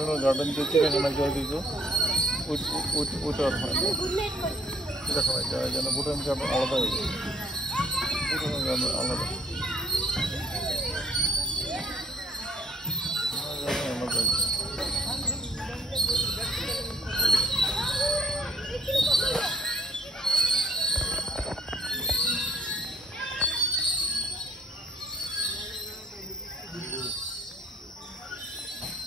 গার্ডেন যে চিড়িয়াখানা যায় দিকে ওইটা আর হয় না, চিড়িয়াখানায় যাওয়া যায় না। ভুটান গার্ডেন আলাদা হয়ে যায়, ভুটানের গার্ডেন আলাদা আলাদা।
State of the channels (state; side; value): normal; both; correlation 0.61